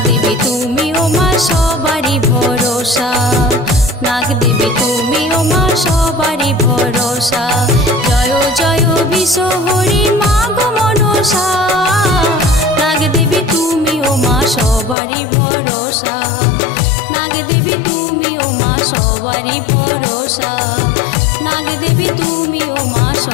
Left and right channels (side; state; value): right; drops out; at 15.0 s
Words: দেবী তুমি ও মা সবারই ভরসা। নাগ দেবী তুমি ও মা সবারই ভরসা। জয় জয় বিশ্বহরি মা গো মনসা, নাগ দেবী তুমি ও মা সবারই ভরসা। নাগ দেবী তুমি ও মা সবারই ভরসা। নাগ দেবী তুমি ও মা